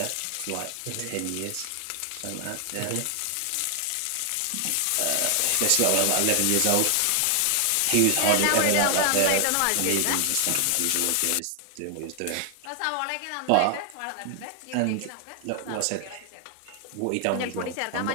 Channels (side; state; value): both; different; correlation 0.00